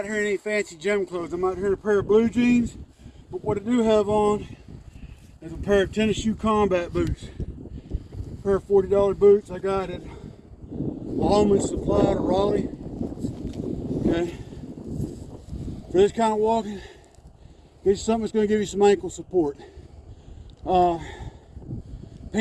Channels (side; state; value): both; identical; correlation 1.00